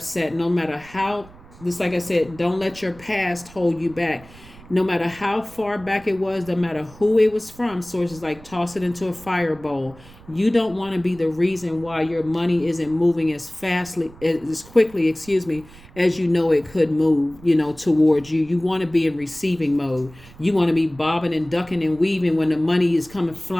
no matter how, just like I said, don't let your past hold you back. No matter how far back it was, no matter who it was from, Source is like, toss it into a fire bowl. You don't want to be the reason why your money isn't moving as quickly, as you know it could move, towards you. You want to be in receiving mode. You want to be bobbing and ducking and weaving when the money is coming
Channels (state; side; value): noise; right; rumble, 21 dB below the sound